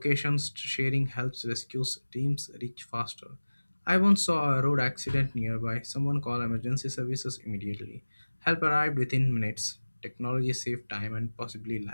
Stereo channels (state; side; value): inverted; both; correlation -1.00